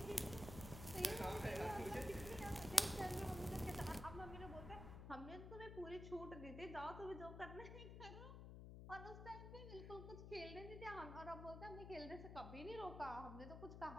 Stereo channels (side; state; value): left; noise; hum, 8 dB below the sound